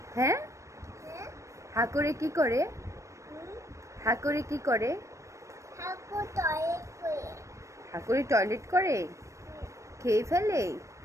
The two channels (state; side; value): late; left; 0.15 ms